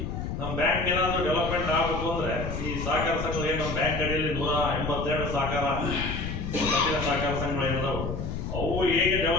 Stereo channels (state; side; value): noise; left; rumble, 4 dB below the sound